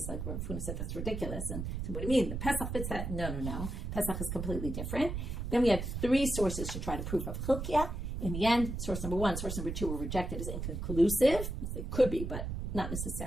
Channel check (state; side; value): noise; right; rumble, 4 dB below the sound